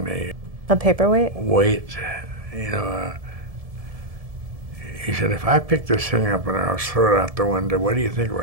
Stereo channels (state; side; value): late; left; 1.7 ms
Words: A paperweight? Weight, you know. He said, "If I picked this thing up and I was throw it out the window, what do you think